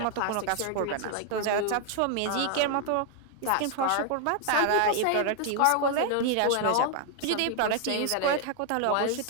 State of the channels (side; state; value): both; different; correlation 0.00